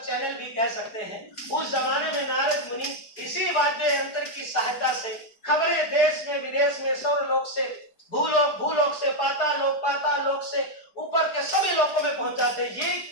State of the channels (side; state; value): right; late; 4.7 ms